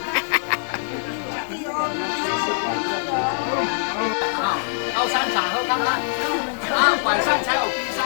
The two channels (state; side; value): silent; right; digital silence